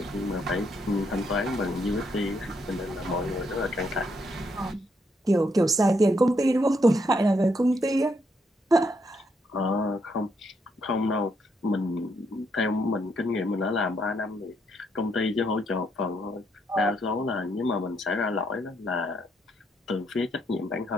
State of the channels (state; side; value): normal; both; correlation 0.75